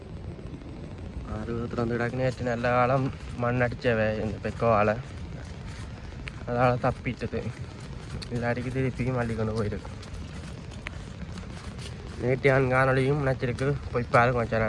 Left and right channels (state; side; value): identical; both; correlation 1.00